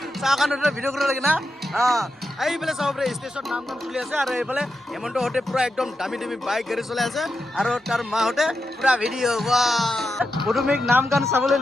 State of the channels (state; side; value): normal; both; correlation 0.87